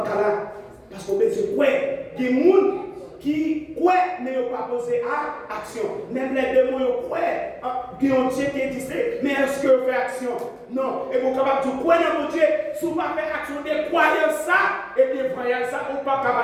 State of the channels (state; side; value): identical; both; correlation 1.00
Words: là. Parce qu'on peut se croire. Il y a des gens qui croient, mais ils n'ont pas posé à action. Même les démons, ils croient. Qui ont Dieu qui existe, mais est-ce que vous faites action? Non. Et vous êtes capable de croire dans mon Dieu, si vous ne faites pas action de croire ça, et bien voyez ça, vous ne pas